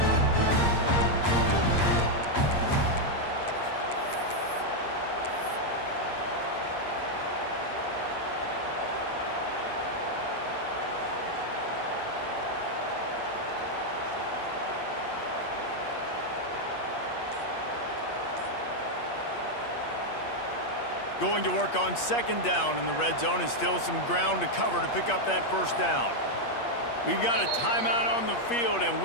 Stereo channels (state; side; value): late; right; 8.5 ms